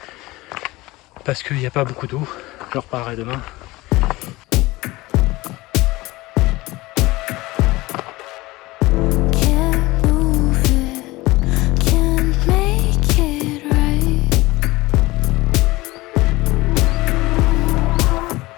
parce qu'il n'y a pas beaucoup d'eau. Je reparlerai demain.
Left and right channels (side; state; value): right; quieter; 20.2 dB